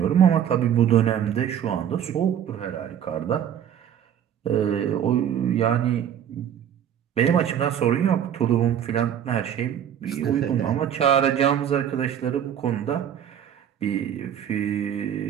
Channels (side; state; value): left; quieter; 9.5 dB